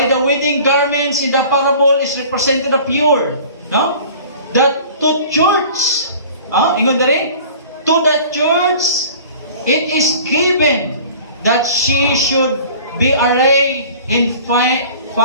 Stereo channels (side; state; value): both; inverted; correlation -0.44